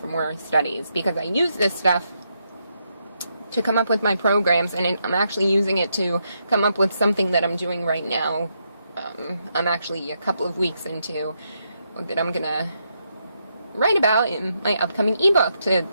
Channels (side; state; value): both; inverted; correlation -0.80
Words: more studies, because I use this stuff to come up with my programs, and I'm actually using it to come up with something that I'm doing right now. I'm actually a couple of weeks into that I'm gonna write about in my upcoming ebook